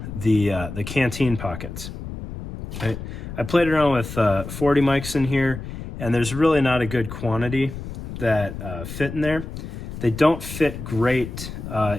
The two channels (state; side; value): noise; left; rumble, 9 dB below the sound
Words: the Canteen pockets. I played around with 40 mics in here, and there's really not a good quantity that fit in there. They don't fit great